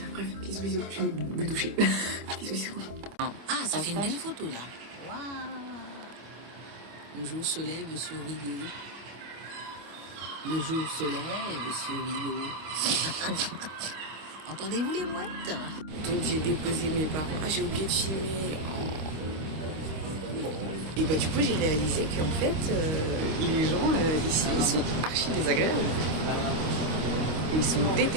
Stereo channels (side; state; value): left; late; 25 ms